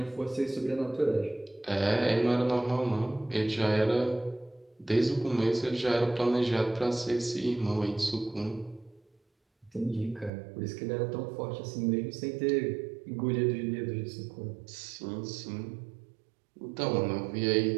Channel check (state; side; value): drops out; left; at 10.3 s